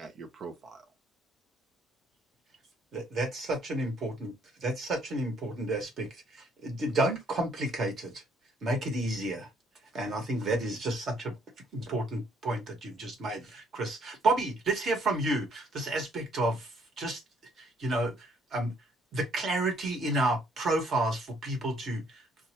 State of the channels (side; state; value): both; normal; correlation 0.66